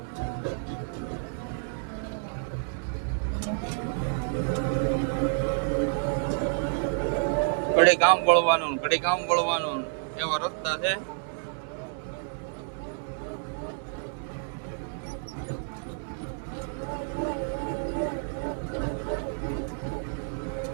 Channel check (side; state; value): left; silent; 58 dB below the other